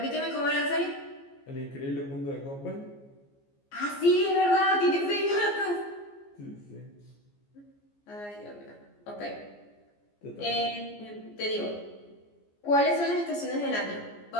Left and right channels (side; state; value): right; late; 14 ms